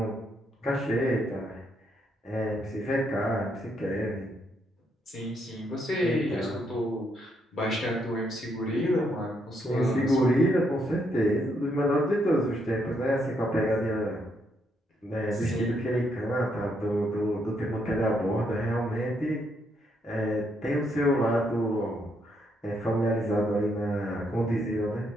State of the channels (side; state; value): both; normal; correlation 0.75